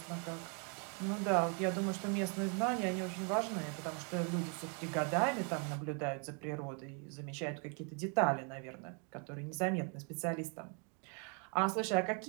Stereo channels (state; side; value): quieter; left; 38.0 dB